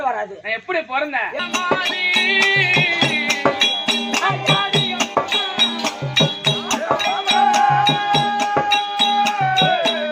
வராது. நான் எப்படி பிறந்தேன்?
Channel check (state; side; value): identical; both; correlation 1.00